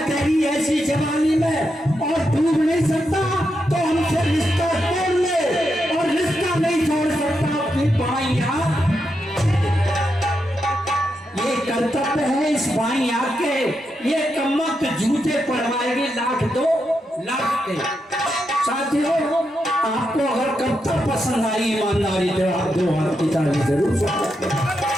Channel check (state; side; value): normal; both; correlation 0.84